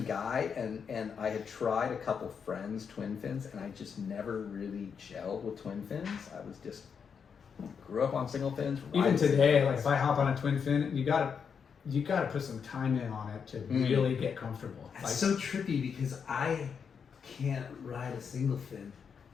guy, and I had tried a couple friends twin fins, and I just never really gelled with twin fins. I was just grew up on single fins. Even today, like if I hop on a twin fin, you gotta put some time in on it to really get comfortable. It's Like, so trippy because I can't ride a single fin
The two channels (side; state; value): right; quieter; 6.6 dB